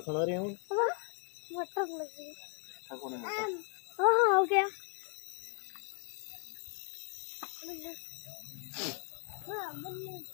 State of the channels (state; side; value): quieter; right; 32.3 dB